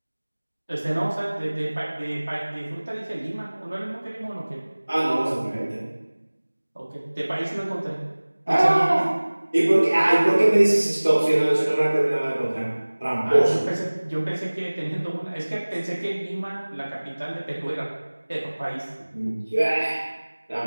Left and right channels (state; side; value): inverted; both; correlation -1.00